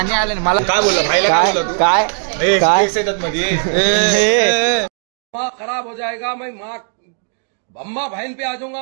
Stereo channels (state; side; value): silent; left; 64 dB below the other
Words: आलं ना मला काय बोलला भाईला काय बोलला तू काय येतात मध्ये खराब हो जाएगा मैं माँ अम्मा बहन पे आ